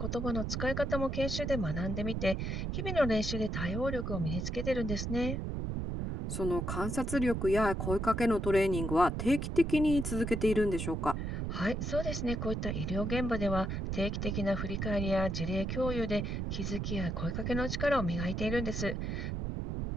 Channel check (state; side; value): noise; right; rumble, 2 dB below the sound